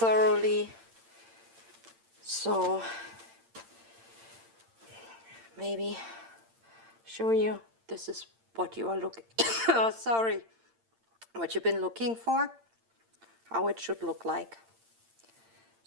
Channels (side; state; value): left; late; 8.8 ms